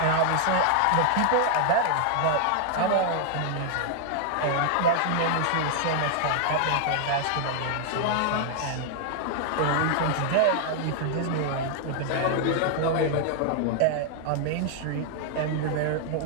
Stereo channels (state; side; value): different; both; correlation 0.00